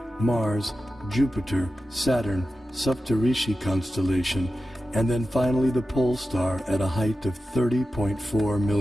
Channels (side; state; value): both; normal; correlation 0.93